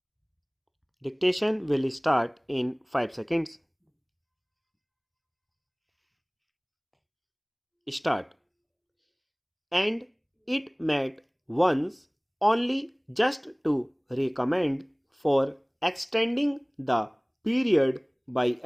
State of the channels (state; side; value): identical; both; correlation 1.00